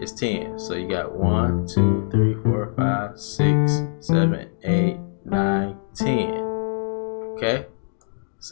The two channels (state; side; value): silent; right; digital silence